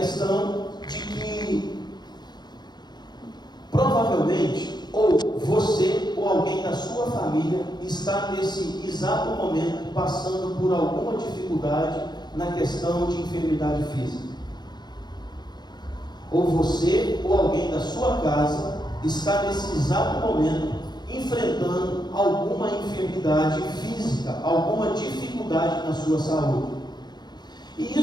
de que provavelmente ou você ou alguém da sua família está nesse exato momento passando por alguma dificuldade na questão de enfermidade física. Ou você ou alguém da sua casa está nesse exato momento enfrentando alguma enfermidade física, alguma dificuldade na sua saúde. E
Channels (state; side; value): late; right; 0.21 ms